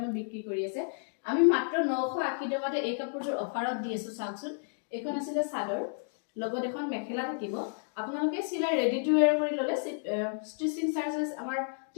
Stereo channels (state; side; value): silent; right; digital silence